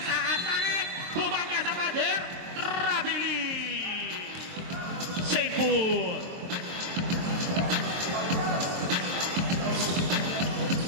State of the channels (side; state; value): left; late; 23 ms